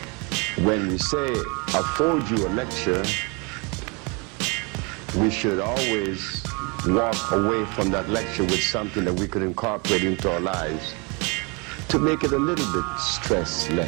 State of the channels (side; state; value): left; quieter; 30.9 dB